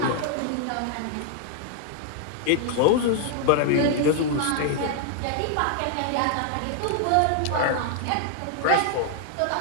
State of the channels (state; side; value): different; both; correlation 0.00